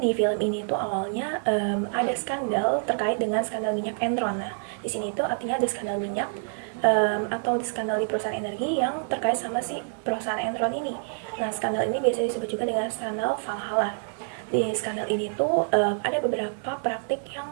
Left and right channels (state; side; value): silent; left; digital silence